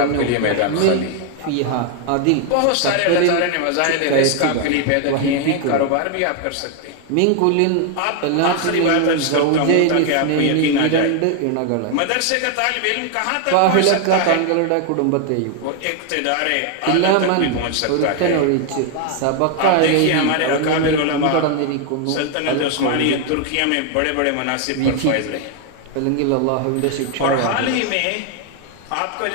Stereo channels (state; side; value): different; both; correlation 0.01